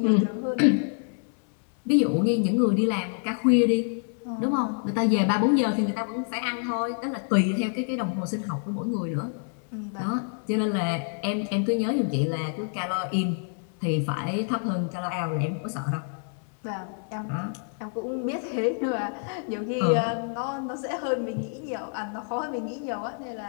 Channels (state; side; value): silent; right; 60 dB below the other